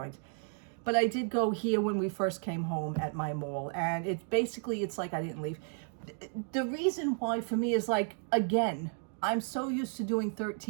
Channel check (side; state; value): left; silent; 56 dB below the other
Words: But I did go here when we first came home at my mall, and it's like I didn't leave. The reason why for me is like, again, I'm so used to doing